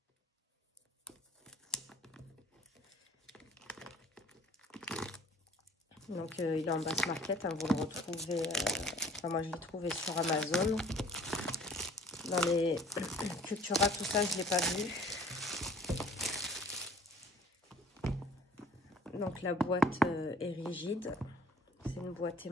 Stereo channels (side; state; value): both; normal; correlation 0.50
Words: Donc il est en basse market, hein, vous le retrouvez, enfin moi je l'ai trouvé sur Amazon. Dans les Cultura, tout ça, je ne l'ai pas vu. Donc la boîte est rigide, c'est une boîte